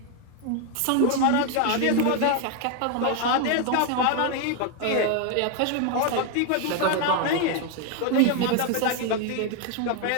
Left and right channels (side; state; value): both; different; correlation 0.01